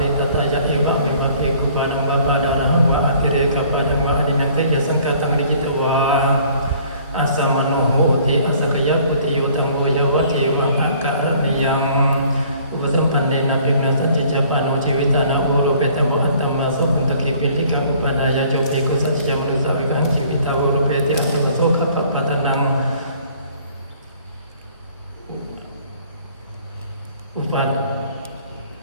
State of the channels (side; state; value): both; inverted; correlation -0.56